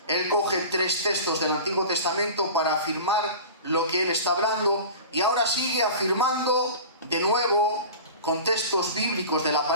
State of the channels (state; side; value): inverted; both; correlation -0.35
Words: Él coge 3 textos del Antiguo Testamento para afirmar lo que él está hablando, y ahora sigue afirmando de nuevo con textos bíblicos de la